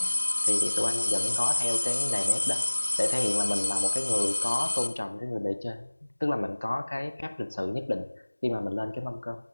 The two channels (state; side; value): inverted; both; correlation -1.00